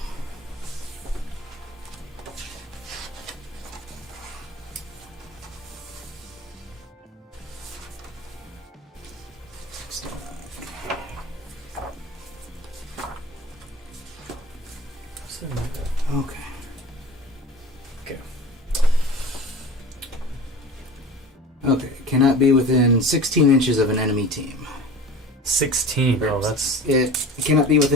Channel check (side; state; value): both; normal; correlation 0.37